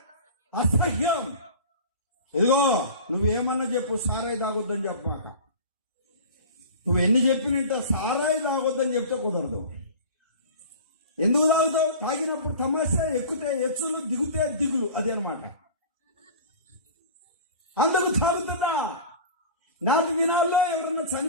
అసహ్యం. ఇదిగో నువ్వేమన్నా చెప్పు, సారాయి తాగొద్దని చెప్పమాక. నువ్వు ఎన్ని చెప్పినంట సారాయి తాగొద్దని చెప్తే కుదరదు. ఎందుకు తాగుతావు? తాగినప్పుడు తమాషా, ఎక్కితే ఎచ్చులు, దిగుతే దిగులు, అది అనమాట. అందరూ తాగుతున్నా. నాటి దినాల్లో ఎవరన్నా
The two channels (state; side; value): inverted; both; correlation -0.37